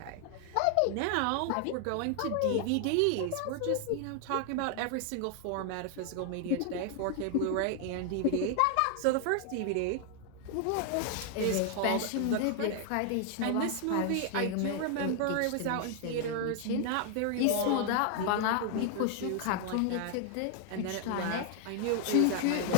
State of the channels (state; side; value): different; both; correlation 0.00